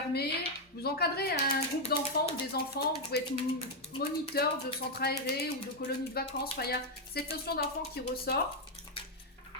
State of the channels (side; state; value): both; normal; correlation 0.01